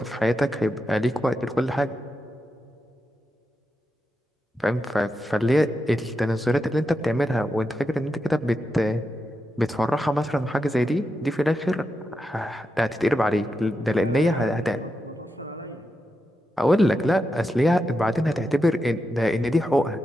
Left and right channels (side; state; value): both; normal; correlation 0.87